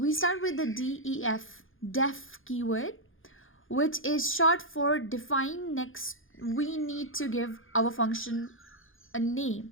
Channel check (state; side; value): late; right; 0.59 ms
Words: start with the def keyword, which is short for define. Next, we need to give our function a name.